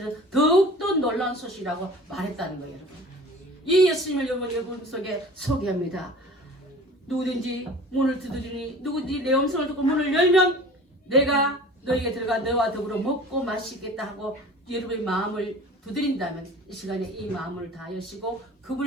더욱더 놀라운 소식이라고 말했다는 거예요, 여러분. 이 예수님을 여러분 속에 소개합니다. 누구든지 문을 두드리니 누구든지 내 음성을 듣고 문을 열면 내가 너에게 들어가 너와 더불어 먹고 마시겠다 하고 여러분의 마음을 두드린다면 이 시간에 이 마음을 다 여시고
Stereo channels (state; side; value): normal; both; correlation 0.42